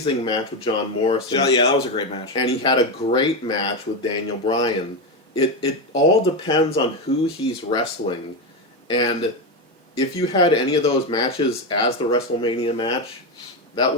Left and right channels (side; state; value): both; normal; correlation 0.12